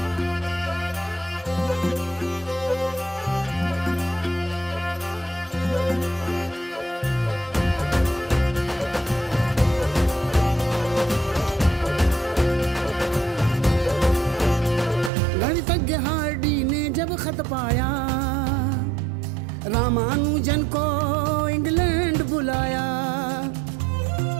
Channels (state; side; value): drops out; left; at 15.1 s